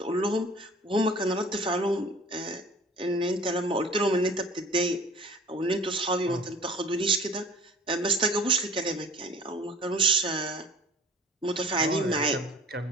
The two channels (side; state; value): both; normal; correlation 0.45